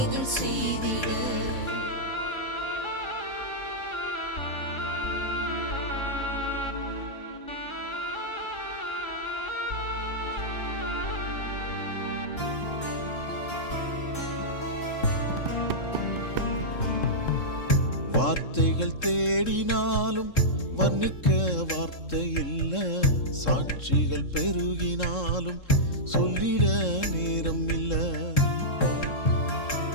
செய்திட. வார்த்தைகள் தேடினாலும் வர்ணிக்க வார்த்தை இல்ல. சாட்சிகள் பெருகினாலும் சொல்லிட நேரம் இல்ல.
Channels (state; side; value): late; right; 3.7 ms